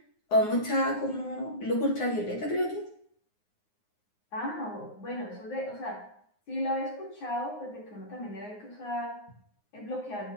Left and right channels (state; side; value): late; right; 9.6 ms